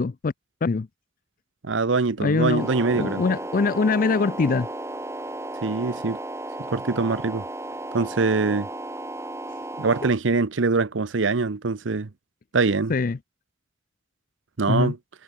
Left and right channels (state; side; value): normal; both; correlation 0.25